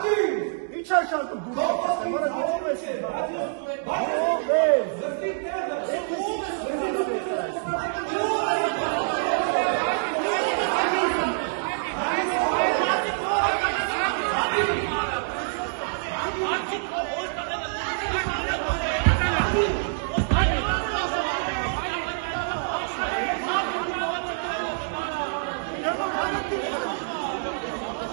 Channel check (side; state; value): left; silent; digital silence